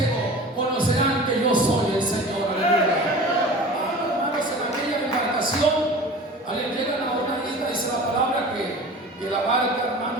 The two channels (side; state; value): both; normal; correlation 0.38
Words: conocerán que yo soy el Señor. Aleluya. Hermanos, en aquella embarcación, llegan a una isla, dice la palabra que la barca,